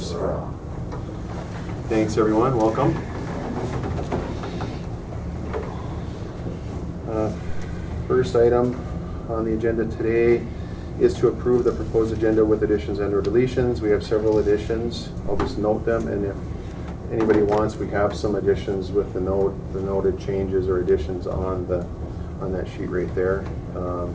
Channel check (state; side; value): identical; both; correlation 1.00